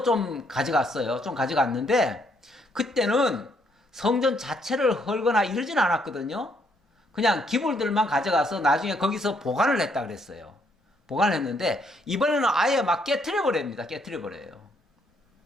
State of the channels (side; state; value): both; normal; correlation 0.71